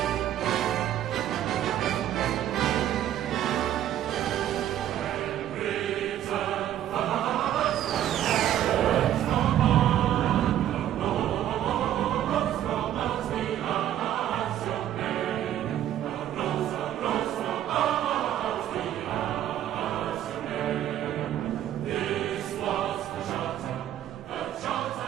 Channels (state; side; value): quieter; left; 11.7 dB